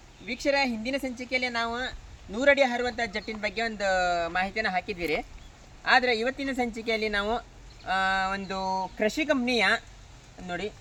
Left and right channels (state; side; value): identical; both; correlation 1.00